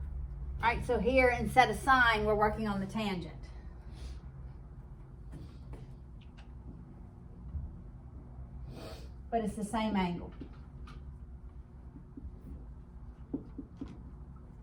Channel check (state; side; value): identical; both; correlation 1.00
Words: All right, so here instead of sine, we're working on the tangent. But it's the same angle.